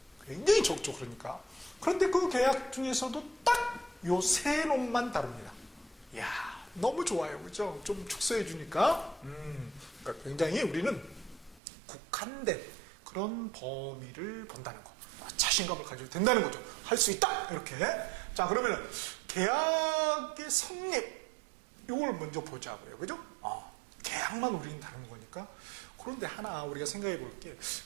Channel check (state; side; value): drops out; left; at 11.6 s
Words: 굉장히 적죠, 그러니까. 그런데 그 계약 중에서도 딱 요 세 놈만 다룹니다. 이야, 너무 좋아요. 그죠? 좀 축소해 주니까. 그러니까 굉장히 우리는 국한된 그런 범위를 본다는 거. 자신감을 가지고 된다는 거죠. 할 수 있다! 이렇게. 자, 그러면은 계약의 성립, 이걸 먼저 보자고요. 그죠? 계약만 우리는 다루는 거니까. 그런데 하나 우리가 생각해 볼 게,